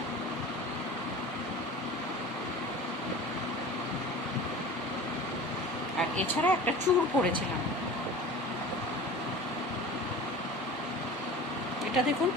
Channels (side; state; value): both; normal; correlation 0.37